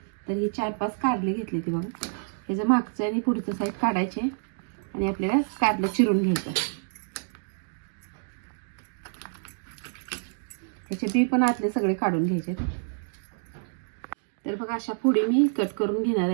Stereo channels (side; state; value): left; silent; digital silence